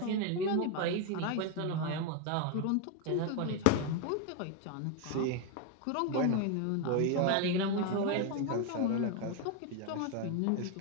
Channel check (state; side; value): different; both; correlation 0.01